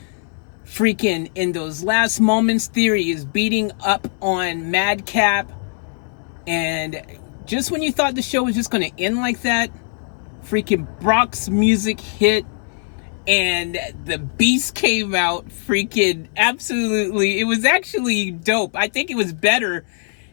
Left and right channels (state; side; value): silent; right; 56 dB below the other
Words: Freaking in those last moments, Theory is beating up on Madcap, and just when you thought the show was just going to end like that, freaking Brock's music hit and the Beast came out. Freaking absolutely, it was actually dope. I think it was better